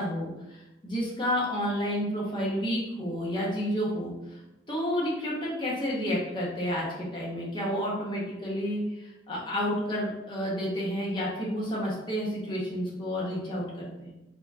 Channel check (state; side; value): normal; both; correlation 0.50